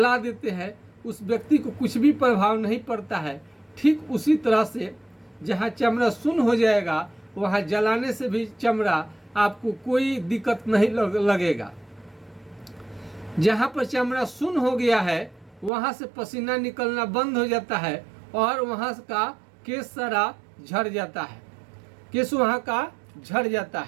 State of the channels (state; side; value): drops out; left; at 15.7 s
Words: देते हैं उस व्यक्ति को कुछ भी प्रभाव नहीं पड़ता है, ठीक उसी तरह से जहाँ चमड़ा सुन्न हो जाएगा वहाँ जलाने से भी चमड़ा आपको कोई दिक्कत नहीं लगेगा। जहाँ पर चमड़ा सुन्न हो गया है वहाँ से पसीना निकलना बंद हो जाता है और वहाँ का केश सारा झड़ जाता है, केश वहाँ का झड़ जाता